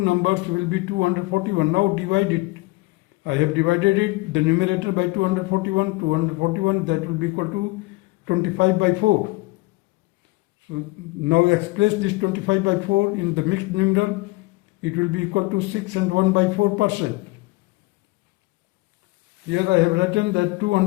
will be 241. Now divide it. I have divided it, the numerator by 241, that will be equal to 25 by 4. So now express this 25 by 4 in the mixed number, it will be equal to 6 and 1 by 4%. Here I have written that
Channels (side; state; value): right; quieter; 22.7 dB